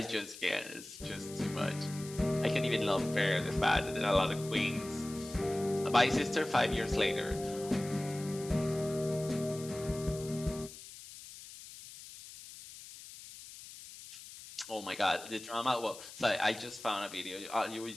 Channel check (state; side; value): noise; left; hiss, 15 dB below the sound